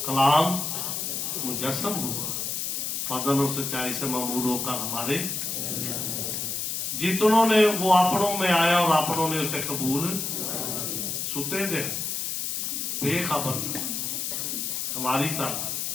कलाम मुजस्सम हुआ, फजल और सच्चाई से ममूर होकर हमारे जितनों ने वो अपनों में आया और अपनों ने उसे कबूल सुते दे बेखबर था हमारी तरह,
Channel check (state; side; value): noise; left; hiss, 2 dB below the sound